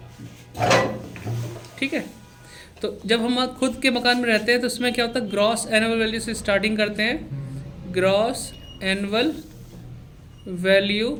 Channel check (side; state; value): both; identical; correlation 1.00